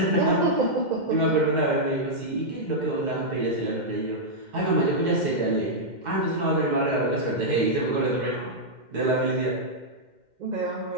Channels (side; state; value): left; late; 2.1 ms